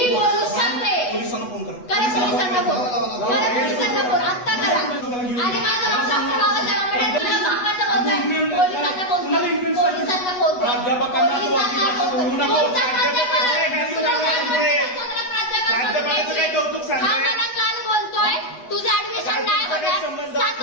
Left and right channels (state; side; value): late; right; 8.1 ms